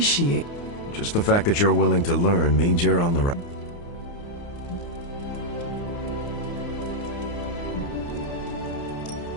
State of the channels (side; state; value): right; late; 29 ms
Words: Just the fact that you're willing to learn means you're on the right.